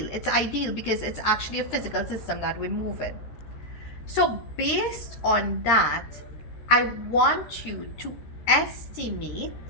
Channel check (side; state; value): right; late; 13 ms